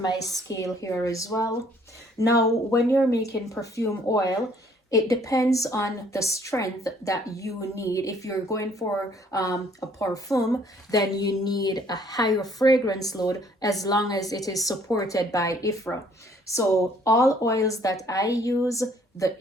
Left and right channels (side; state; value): both; normal; correlation 0.61